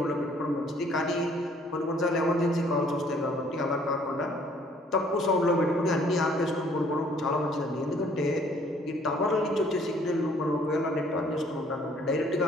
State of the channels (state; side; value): normal; both; correlation 0.60